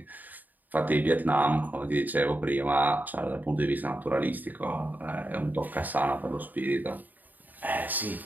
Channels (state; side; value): late; left; 0.085 ms